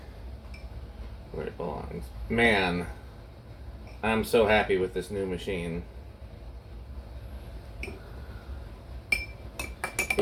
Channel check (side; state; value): both; identical; correlation 1.00